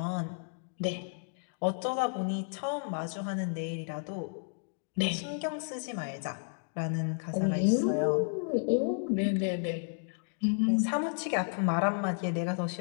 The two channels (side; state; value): right; silent; digital silence